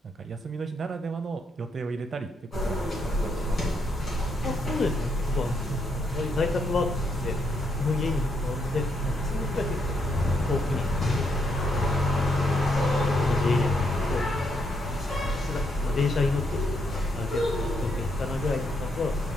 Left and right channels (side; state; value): both; normal; correlation 0.76